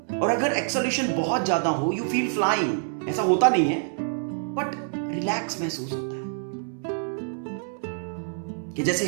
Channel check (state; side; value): silent; left; digital silence